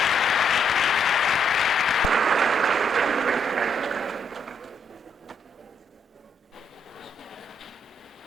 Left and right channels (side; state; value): both; normal; correlation 0.74